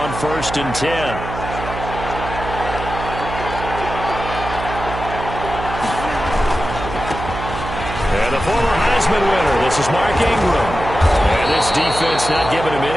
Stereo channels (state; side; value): noise; right; hum, 8 dB below the sound